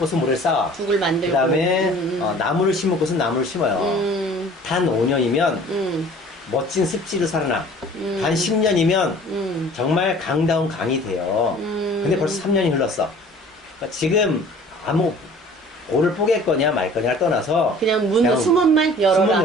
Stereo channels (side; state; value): both; normal; correlation 0.48